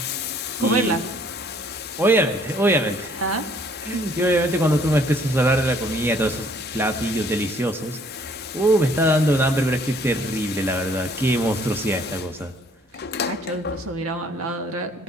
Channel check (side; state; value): both; normal; correlation 0.61